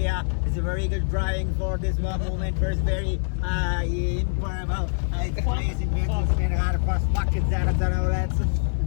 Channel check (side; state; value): right; silent; digital silence